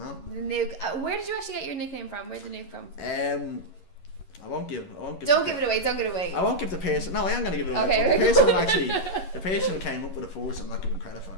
The Nuke. Where did you actually get your nickname from? Where's the Nuke from? I won't give. Don't give it away. Don't give it away. I won't give the person. No, I am gonna give it away. Okay. The person who came up with the force, I'm not giving credit for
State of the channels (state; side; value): late; right; 11 ms